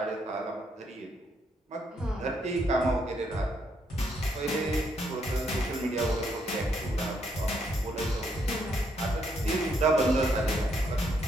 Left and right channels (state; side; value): normal; both; correlation 0.74